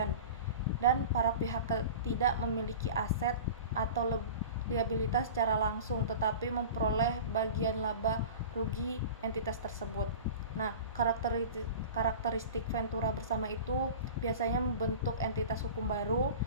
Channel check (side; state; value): both; inverted; correlation -0.36